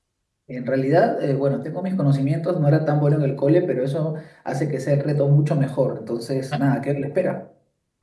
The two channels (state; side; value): identical; both; correlation 1.00